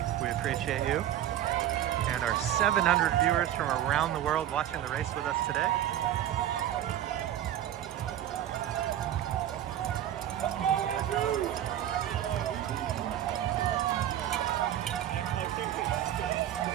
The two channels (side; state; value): left; quieter; 11.8 dB